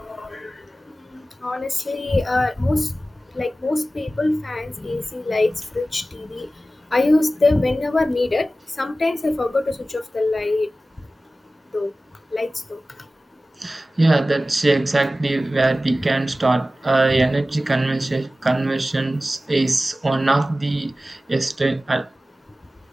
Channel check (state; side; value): normal; both; correlation 0.95